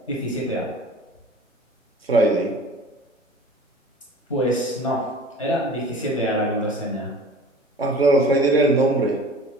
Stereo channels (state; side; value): normal; both; correlation 0.43